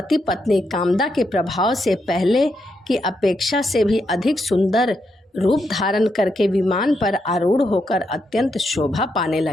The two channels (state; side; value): normal; both; correlation 0.81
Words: पत्नी कामदा के प्रभाव से पहले की अपेक्षा से भी अधिक सुंदर रूप धारण करके विमान पर आरूढ़ होकर अत्यंत शोभा पाने